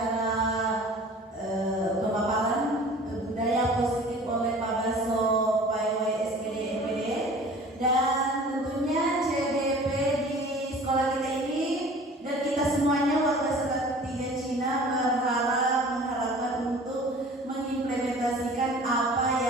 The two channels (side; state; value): both; normal; correlation 0.45